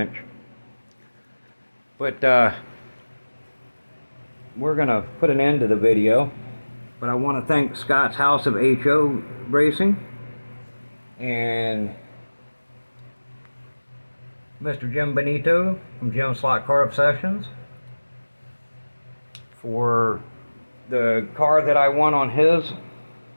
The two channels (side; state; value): both; inverted; correlation -1.00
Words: But we're gonna put an end to the video. But I want to thank Scott's House of HO Racing and Mr. Jim Benito from Jim Slot Car Obsessions for the car that I won on his